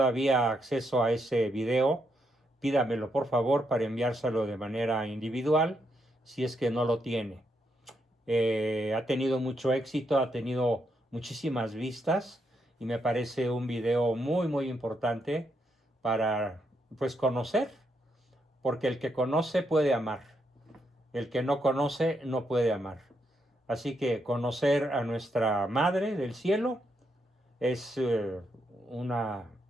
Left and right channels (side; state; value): both; normal; correlation 0.79